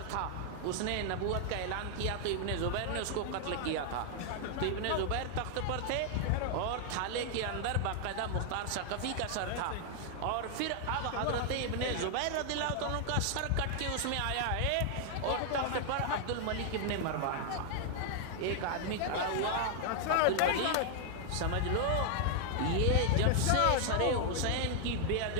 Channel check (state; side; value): different; both; correlation 0.00